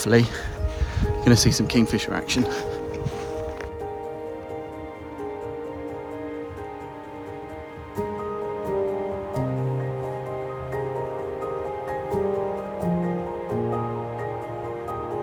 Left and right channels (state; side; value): identical; both; correlation 1.00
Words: going to see some kingfisher action.